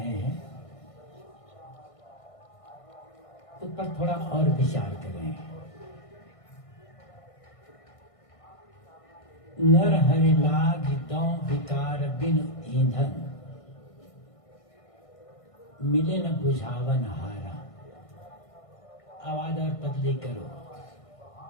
हैं। उस पर थोड़ा और विचार करें। नर हरि लाग दौ विकार बिन ईंधन, मिले न बुझावन हारा। आवाज और पतली करो।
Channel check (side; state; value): right; late; 1.6 ms